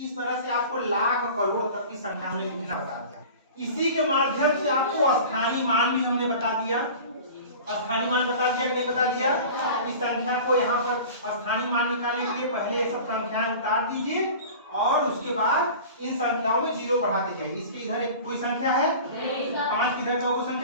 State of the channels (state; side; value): inverted; both; correlation -0.39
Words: तरह से आपको लाख करोड़ तक की संख्या में लिखना बता दिया। इसी के माध्यम से आपको स्थानीय मान भी हमने बता दिया। स्थानीय मान बता दिया कि नहीं बता दिया। इस संख्या को यहाँ पर स्थानीय मान निकालने के लिए पहले ये सब संख्याएं उतार दीजिए और उसके बाद इन संख्याओं में 0 बढ़ाते जाइए। इसकी इधर एक कोई संख्या है, 5 किधर का वो